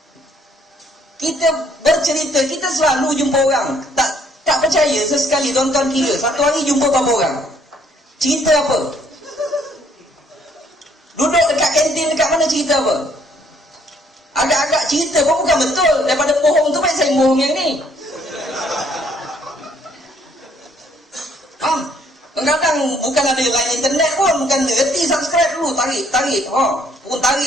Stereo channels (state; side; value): normal; both; correlation 0.65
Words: Kita bercerita, kita selalu jumpa orang. Tak percaya sesekali tuan-tuan kira satu hari jumpa berapa orang? Cerita apa? Duduk dekat kantin dekat mana cerita apa? Agak-agak cerita pun bukan betul. Daripada bohong tu baik saya bohong yang ni. Kadang-kadang bukan ada line internet pun, bukan reti subscribe dulu, tarik. Pun